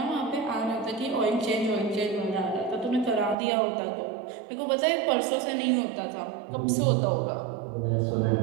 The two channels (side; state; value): left; drops out; at 3.4 s